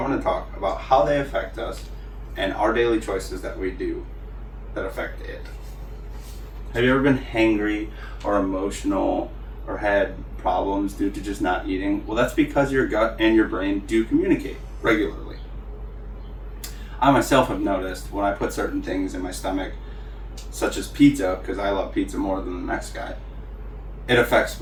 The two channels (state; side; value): identical; both; correlation 1.00